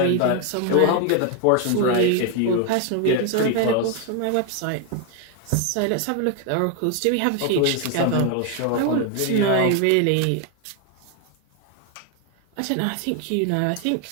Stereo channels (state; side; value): different; both; correlation 0.01